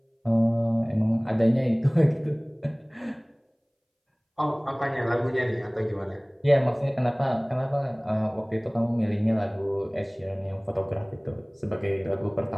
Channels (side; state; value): both; identical; correlation 1.00